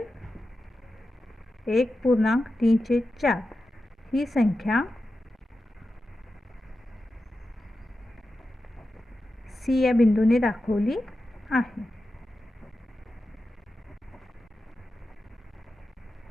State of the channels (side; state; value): both; normal; correlation 0.91